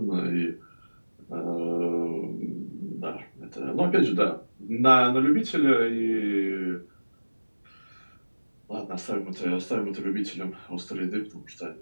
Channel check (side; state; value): both; inverted; correlation -1.00